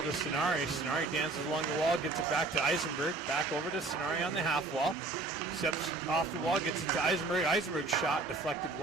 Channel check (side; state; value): left; quieter; 3.6 dB